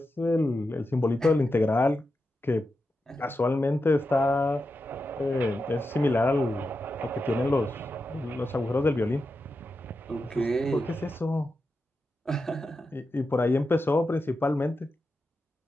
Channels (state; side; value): normal; both; correlation 0.89